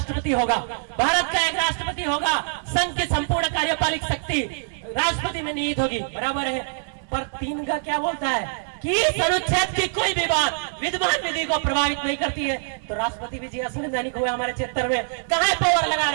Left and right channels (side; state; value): left; silent; digital silence